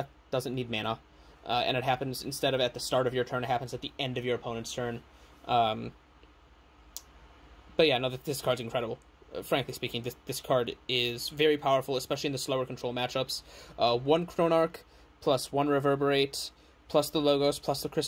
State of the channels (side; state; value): both; identical; correlation 1.00